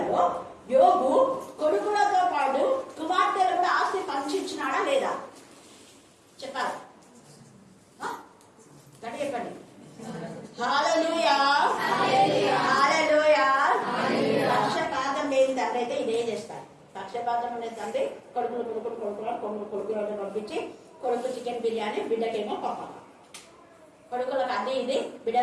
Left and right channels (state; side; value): identical; both; correlation 1.00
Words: యోగు కొడుకులతో పాటు కుమార్తెలు కూడా ఆస్తి పంచిచ్చినాడా లేదా చెప్పాలి. గట్టి చెప్పండి. హల్లెలూయా, హల్లెలూయా. పక్షపాతం లేని తండ్రి అయితే ఇదే చేస్తారు. పక్షపాతం ఉండే తండ్రి కొడుకులను పంపించి కొడుకు చికెన్ బిర్యానీ, బిడ్డకేమో పప్పు, కొడుకులకు అది ఇది,